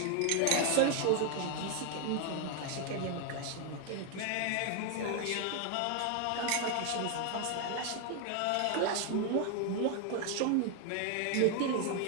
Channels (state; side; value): different; both; correlation 0.00